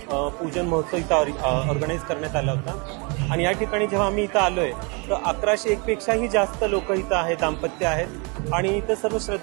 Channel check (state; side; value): quieter; left; 31.8 dB